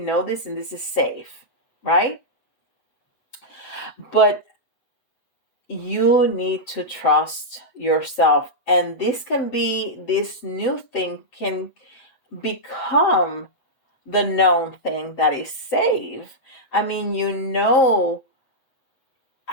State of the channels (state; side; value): late; right; 7.9 ms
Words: this and this is safe, right? But you need to trust yourself. And this new thing can become the known thing that is safe. I mean, you know